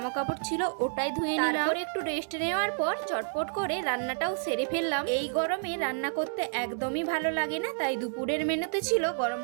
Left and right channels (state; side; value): silent; left; digital silence